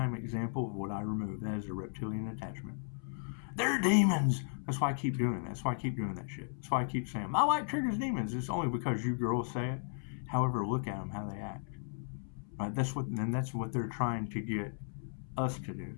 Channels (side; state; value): right; silent; 54 dB below the other